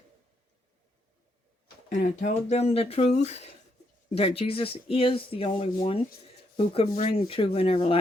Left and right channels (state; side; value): normal; both; correlation 0.77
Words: and I told them the truth, that Jesus is the only one who can bring true and